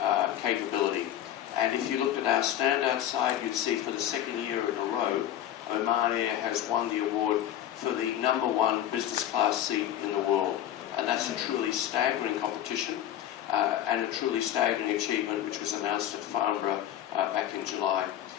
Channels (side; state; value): right; quieter; 11.5 dB